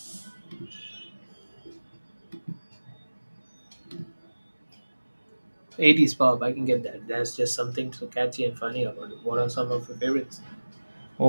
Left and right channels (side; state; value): both; inverted; correlation -1.00